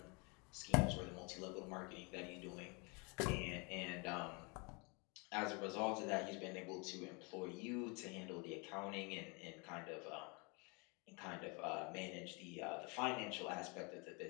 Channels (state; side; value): quieter; right; 30.9 dB